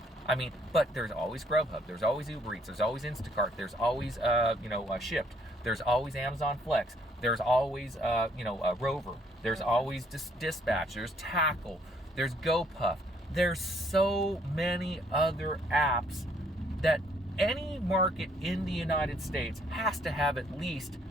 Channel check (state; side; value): normal; both; correlation 0.66